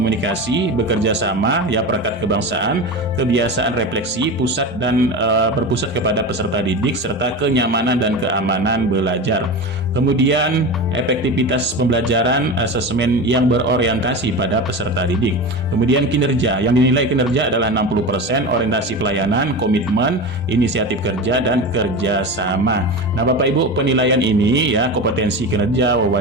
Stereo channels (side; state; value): both; normal; correlation 0.26